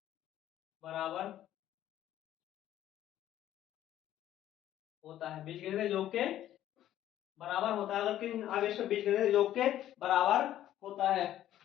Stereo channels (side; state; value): right; quieter; 12.5 dB